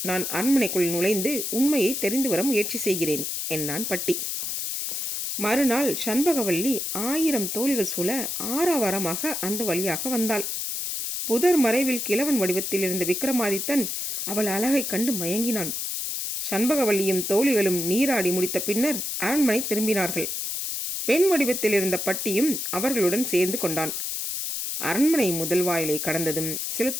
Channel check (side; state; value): left; noise; hiss, 3 dB below the sound